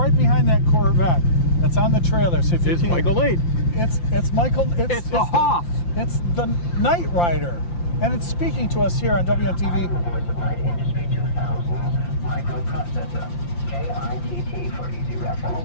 behind that Corvette that's on the trailer. So if you It's Michael 8. It's Michael. It's the Hoff. It's the Knight Rider, and it's speaking to us here on WMTV. Industry 2000 microprocessor, KITT for easy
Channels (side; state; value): right; late; 5.8 ms